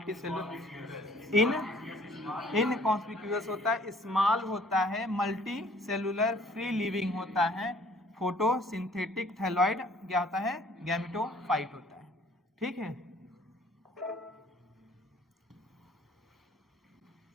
सेलुलर इनकॉन्स्पिक्यूअस होता है, स्मॉल होता है, मल्टी सेलुलर फ्री लिविंग होता है, फोटोसिंथेटिक थैलॉइड क्या होता है गैमेटोफाइट होता है, ठीक है।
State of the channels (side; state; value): both; normal; correlation 0.57